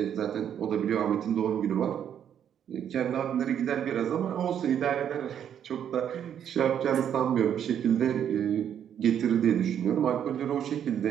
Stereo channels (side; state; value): left; quieter; 9.2 dB